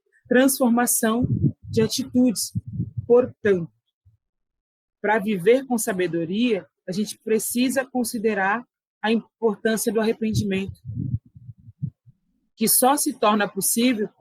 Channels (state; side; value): identical; both; correlation 1.00